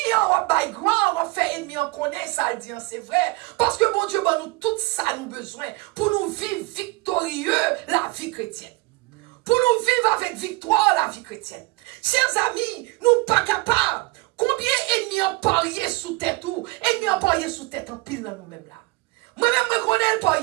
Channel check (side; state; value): left; quieter; 23.2 dB